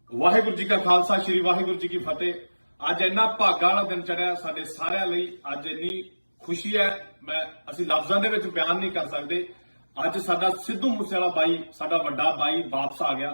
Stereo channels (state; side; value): inverted; both; correlation -1.00